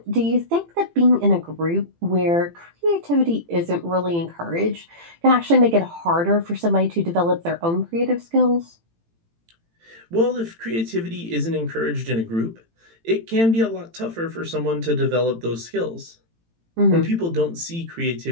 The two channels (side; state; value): left; late; 18 ms